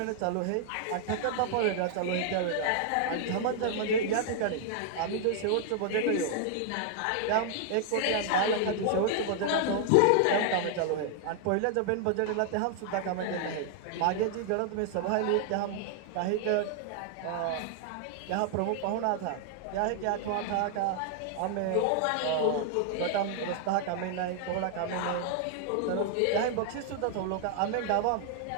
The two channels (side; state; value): both; different; correlation -0.01